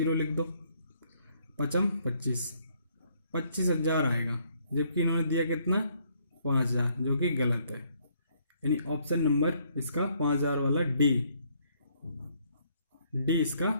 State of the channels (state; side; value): inverted; both; correlation -0.68